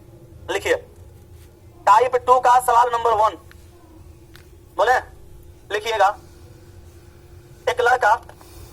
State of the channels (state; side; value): identical; both; correlation 1.00